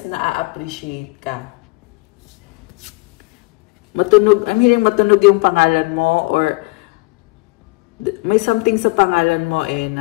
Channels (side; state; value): right; quieter; 26.8 dB